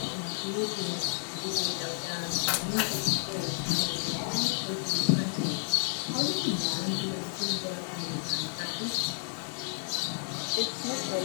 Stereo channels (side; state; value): right; silent; digital silence